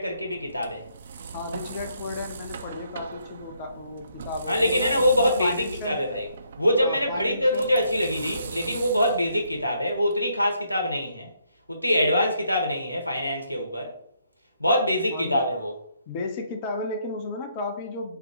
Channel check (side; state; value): both; inverted; correlation -0.72